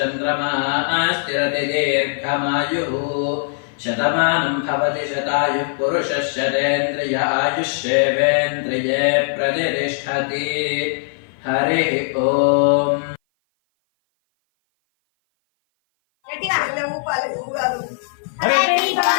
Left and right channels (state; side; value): silent; right; 56 dB below the other